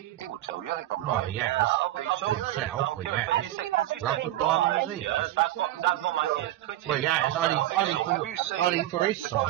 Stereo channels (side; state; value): left; quieter; 14.8 dB